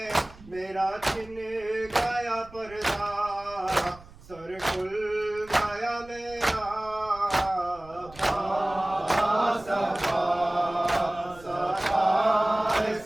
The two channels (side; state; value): right; noise; rumble, 21 dB below the sound